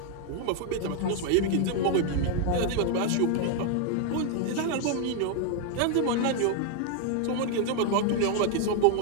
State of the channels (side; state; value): both; different; correlation 0.00